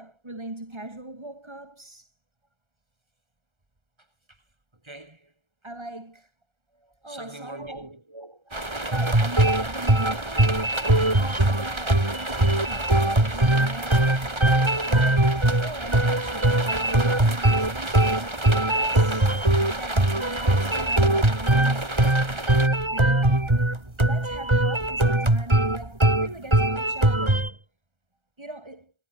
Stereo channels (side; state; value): left; late; 1.3 ms